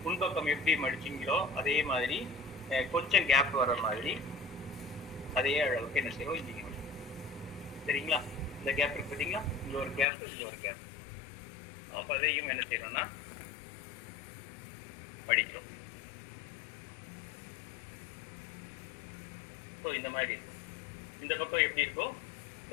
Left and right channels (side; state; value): right; drops out; at 10.1 s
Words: முன்பக்கம் எப்படி மடிச்சிங்களோ அதே மாதிரி கொஞ்சம் கேப் வர மாதிரி அதே அளவுக்கு என்ன செய்வோம் இங்கே சரிங்களா. இந்த கேப் இருக்கு பார்த்தீங்களா, இங்கே ஒரு கேப் இங்கே ஒரு கேப். அப்போ அதையும் என்ன செய்யணும்னா மடிக்கிறோம். ஸோ இந்த மாதிரி இருக்கும். இந்த பக்கம் எப்படி இருக்கும்,